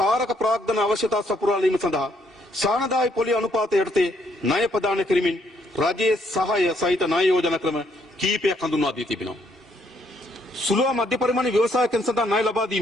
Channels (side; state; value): both; normal; correlation 0.70